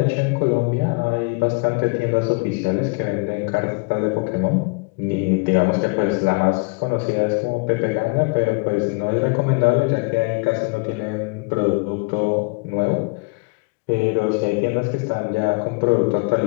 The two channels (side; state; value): right; quieter; 30.4 dB